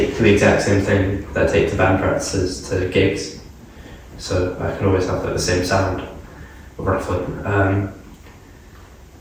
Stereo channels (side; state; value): both; identical; correlation 1.00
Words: the exact same thing that I take to band practices to gigs, so I can always have like the same sound, roughly. And